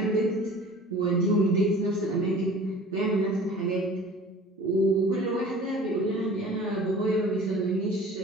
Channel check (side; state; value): both; normal; correlation 0.44